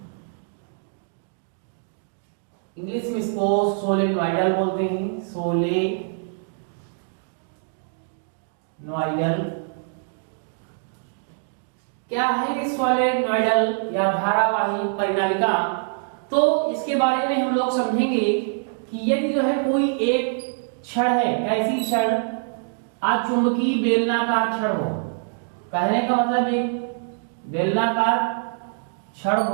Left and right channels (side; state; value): left; silent; digital silence